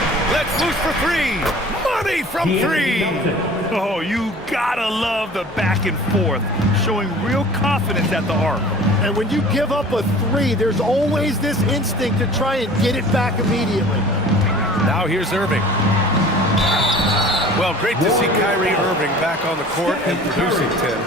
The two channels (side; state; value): both; normal; correlation 0.45